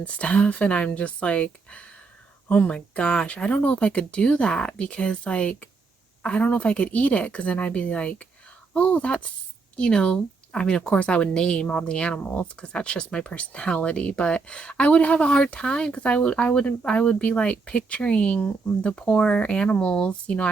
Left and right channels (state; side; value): quieter; left; 4.4 dB